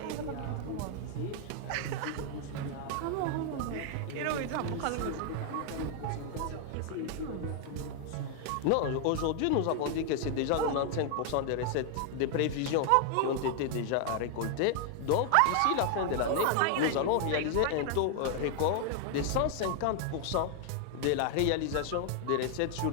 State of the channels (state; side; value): different; both; correlation 0.00